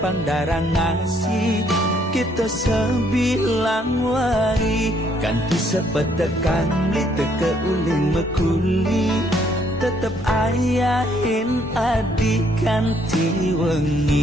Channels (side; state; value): both; normal; correlation 0.68